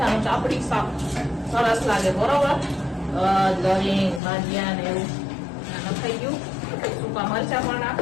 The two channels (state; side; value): drops out; right; at 4.2 s